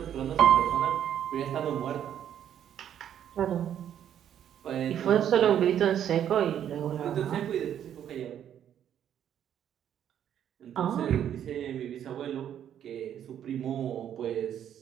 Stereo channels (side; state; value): left; quieter; 9.9 dB